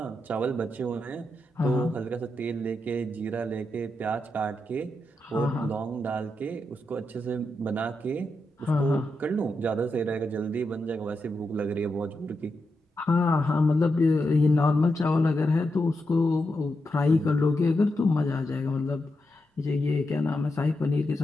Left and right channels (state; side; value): normal; both; correlation 0.86